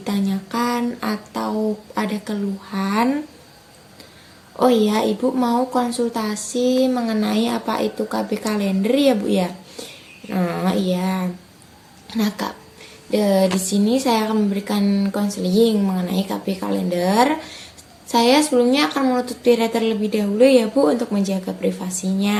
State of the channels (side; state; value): both; identical; correlation 1.00